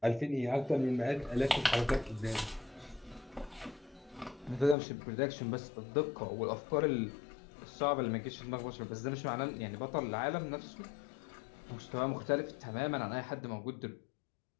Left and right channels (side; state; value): right; drops out; at 4.8 s